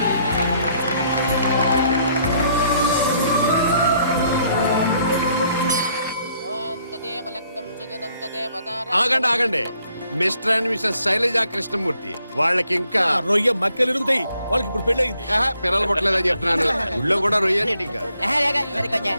ఆగండి ఆగండి. Mr and Mrs Shailaja Krishnamurthy వాళ్ళకి ఇంకా రొయ్య మక్కలు ఎరుగుతాయి. వాళ్ళకి ఇప్పుడు పెళ్ళయింది. పిల్లలు పుట్టలేదని చెప్తున్నాను. ఊళ్ళో కూడా రొయ్య ఇంకా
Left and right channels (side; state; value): both; inverted; correlation -0.69